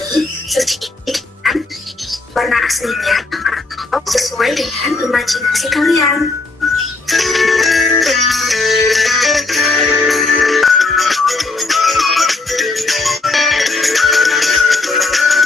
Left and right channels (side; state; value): right; quieter; 3.5 dB